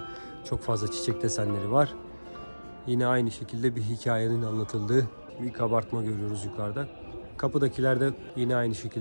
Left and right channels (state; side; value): inverted; both; correlation -1.00